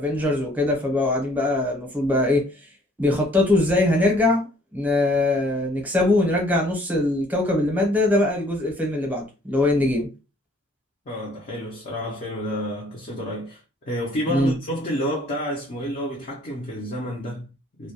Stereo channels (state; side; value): normal; both; correlation 0.59